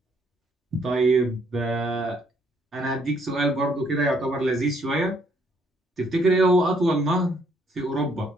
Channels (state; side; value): normal; both; correlation 0.68